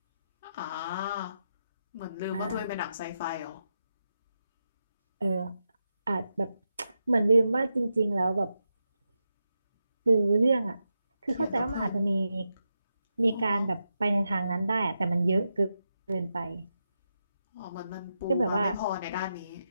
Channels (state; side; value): inverted; both; correlation -0.87